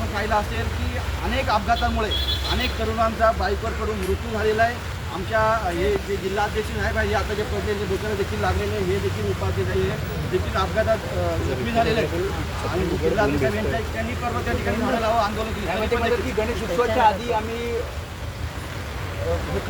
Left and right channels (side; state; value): both; identical; correlation 1.00